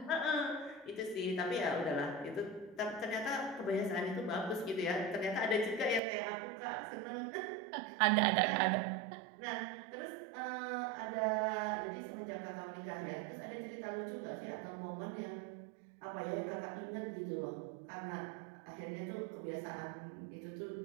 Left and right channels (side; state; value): left; drops out; at 6.0 s